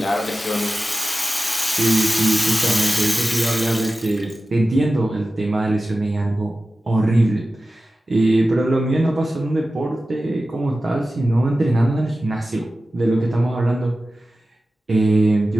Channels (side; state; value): both; normal; correlation 0.95